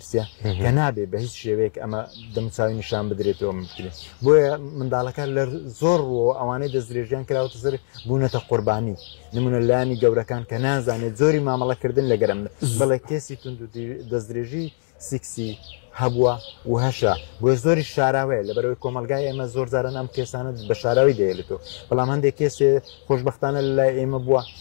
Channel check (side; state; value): right; silent; digital silence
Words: کە نابێ بە هیچ شێوەیەک ئەمە دەموچاوی نیشان بدرێتەوە بکرێت. بۆیە منداڵەکە لە زۆر ڕۆ ئەوانەی دەستدرێژیان کراوەتە سەر بوونەتە قوربانی، نمونە لایەنی گەورەکان کە نازانێت زۆری مامەڵەکردن لەگەرم، بەڵێ کێسی دەستدرێژی سیکسی هەبووە و هەشە، بۆیە زۆری شاراوەیە لە بەرەوەی کۆمەلگای ئێمە زۆر جاران ئەم کێسانە بە شاراوی دەیێتەوە. بەڵام هەندێک کێسێ خۆشبەختانە لای ئێمە بووە،